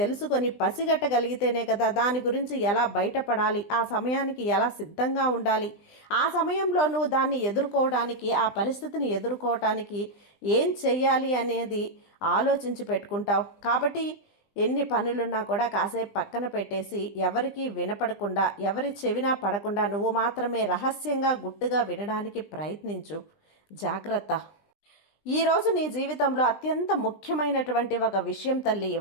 పసిగట్టగలిగితేనే కదా దాని గురించి ఎలా బయటపడాలి, ఆ సమయానికి ఎలా సిద్ధంగా ఉండాలి, ఆ సమయంలో నువ్వు దాన్ని ఎదుర్కోవడానికి, ఆ పరిస్థితిని ఎదుర్కోవటానికి ఏం చెయ్యాలి అనేది ఆలోచించి పెట్టుకుంటావు. కాబట్టి ఎన్ని పనులున్నా కూడా కాసేపు పక్కన పెట్టేసి ఎవరికీ వినపడకుండా, ఎవరి చెవినా పడకుండా నువ్వు మాత్రమే రహస్యంగా గుట్టుగా వినడానికి ప్రయత్నించు. జాగ్రత్త. ఈరోజు నీ జీవితంలో అత్యంత ముఖ్యమైనటువంటి ఒక విషయం తల్లి,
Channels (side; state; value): right; late; 20 ms